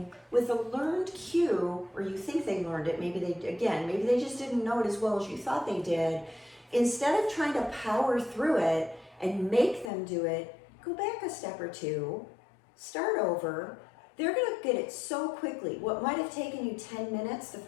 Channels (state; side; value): drops out; right; at 9.9 s